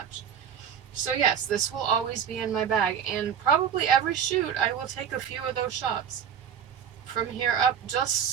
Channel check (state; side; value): quieter; left; 8.2 dB